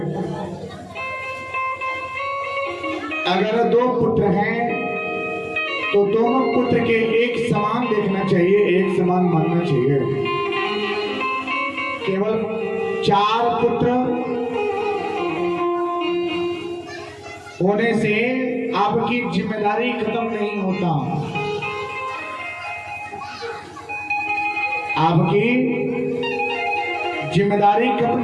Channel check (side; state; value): both; identical; correlation 1.00